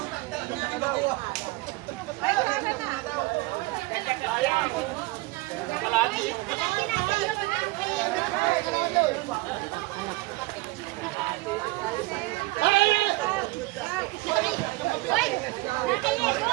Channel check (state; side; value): quieter; left; 22.1 dB